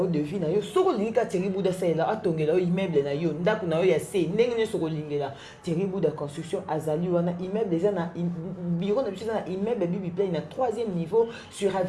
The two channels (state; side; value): identical; both; correlation 1.00